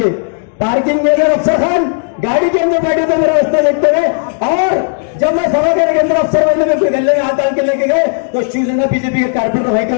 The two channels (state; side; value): silent; right; digital silence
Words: पार्किंग में अफसर खान गाड़ी के अंदर बैठे थे मेरा रास्ता देखते हुए। और जब मैं सभा घर के अंदर अफसर वाले में कोई गले में हाथ डाल के लेके गए तो शिवसेना बीजेपी के कारपेटर भाई के